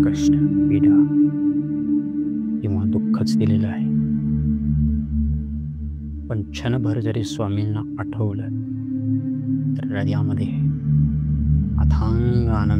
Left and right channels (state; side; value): identical; both; correlation 1.00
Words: कष्ट, पीडा किंवा दुःखच दिलेलं आहे. पण क्षणभर जरी स्वामींना आठवलं तर हृदयामध्ये अथांग